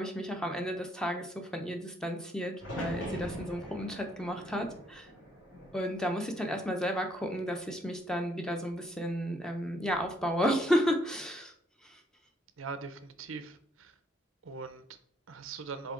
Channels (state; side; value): normal; both; correlation 0.69